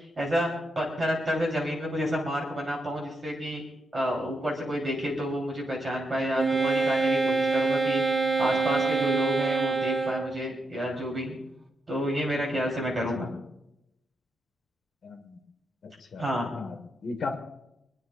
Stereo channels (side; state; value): both; normal; correlation 0.83